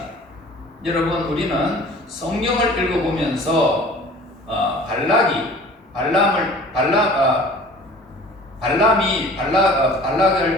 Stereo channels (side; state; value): both; normal; correlation 0.46